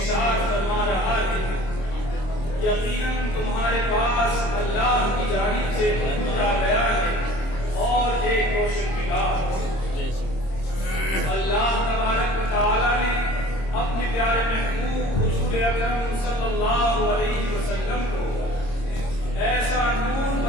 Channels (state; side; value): late; right; 26 ms